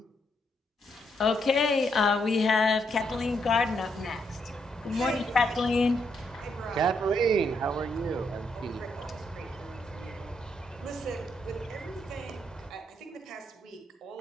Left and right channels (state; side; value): normal; both; correlation 0.77